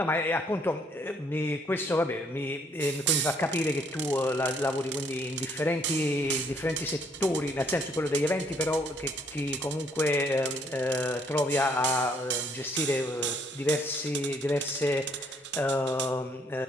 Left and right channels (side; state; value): both; normal; correlation 0.67